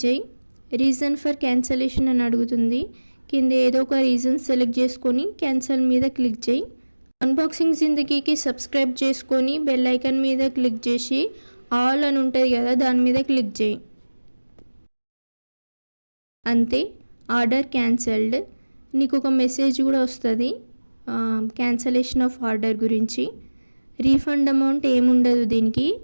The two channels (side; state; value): both; inverted; correlation -1.00